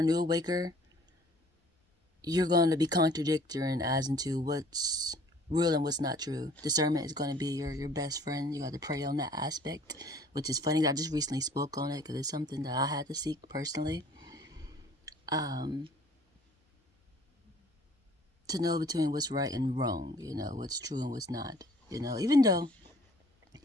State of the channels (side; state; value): both; normal; correlation 0.54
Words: new awaker, you're going to be contradicting as into what's real and what's not true. Discernment is going to be your best friend. You got to pray on that aspect, which is funny. I just recently spoke on it because it's something that I had to seek personally. To know between what's right and wrong, what's true and what's not. Even though,